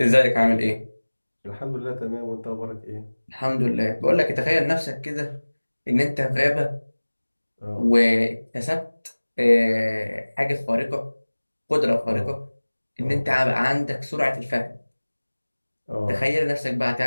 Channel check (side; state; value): both; inverted; correlation -1.00